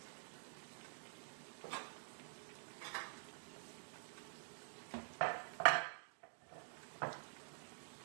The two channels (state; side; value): silent; left; digital silence